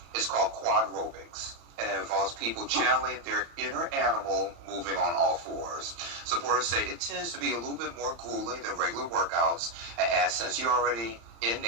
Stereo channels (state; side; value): late; left; 35 ms